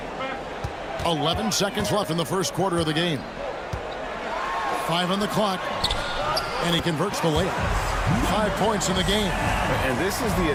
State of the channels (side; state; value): both; identical; correlation 1.00